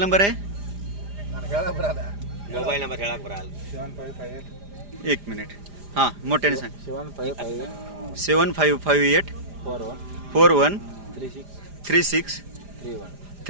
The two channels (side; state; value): left; late; 4.9 ms